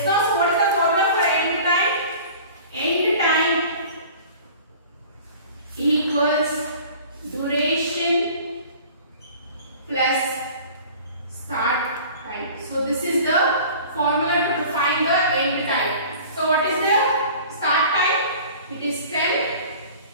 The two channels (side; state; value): both; inverted; correlation -0.44